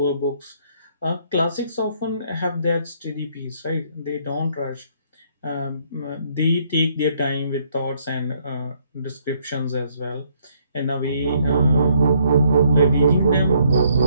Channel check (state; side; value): inverted; both; correlation -0.68